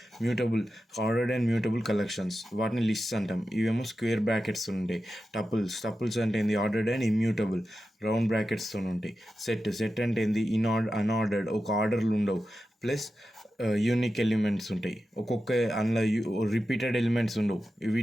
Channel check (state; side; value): normal; both; correlation 0.91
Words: ఆర్డర్డ్ అండ్ మ్యూటబుల్ కలెక్షన్స్, వాటిని లిస్ట్స్ అంటాం. ఇవేమో స్క్వేర్ బ్రాకెట్స్ ఉంటాయి. టపుల్స్ అంటే ఏంది? ఆర్డర్డ్ అండ్ ఇమ్యూటబుల్, రౌండ్ బ్రాకెట్స్తో ఉంటాయి. సెట్ అంటే ఏంది? అన్ఆర్డర్డ్, ఒక ఆర్డర్లు ఉండవు, ప్లస్ యూనిక్ ఎలిమెంట్స్ ఉంటాయి. ఒక్కొక్క అందులో రిపీటెడ్ ఎలిమెంట్స్ ఉండవు.